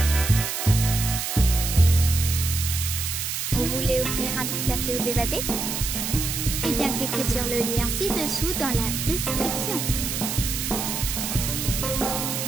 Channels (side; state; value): right; noise; hiss, 3 dB below the sound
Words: Vous voulez offrir un petit café aux évadés? Eh bien, cliquez sur le lien ci-dessous dans la description.